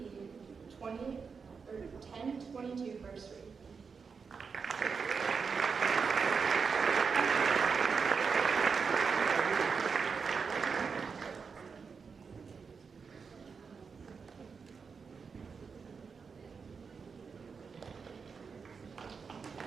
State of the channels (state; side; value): quieter; left; 5.5 dB